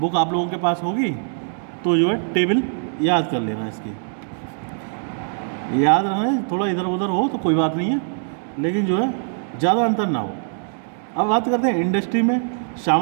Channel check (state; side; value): silent; left; 64 dB below the other